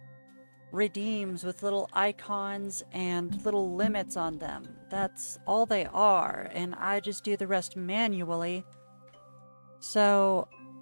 redeems with little icons and little limits on them. That's all they are, and I just do the rest manually. So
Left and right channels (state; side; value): inverted; both; correlation -1.00